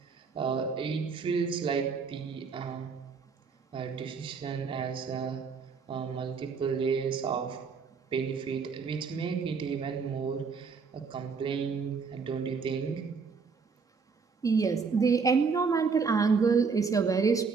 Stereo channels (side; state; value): left; quieter; 5.3 dB